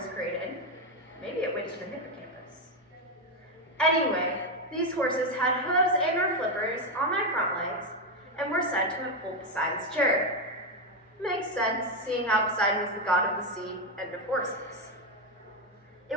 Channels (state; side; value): normal; both; correlation 0.07